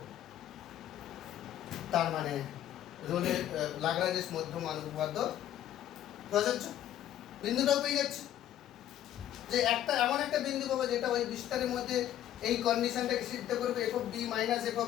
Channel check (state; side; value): quieter; right; 11.7 dB